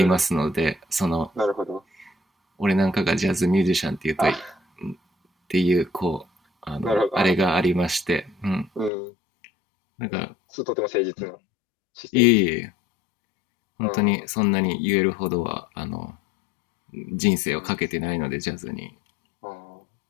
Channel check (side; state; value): right; drops out; at 8.9 s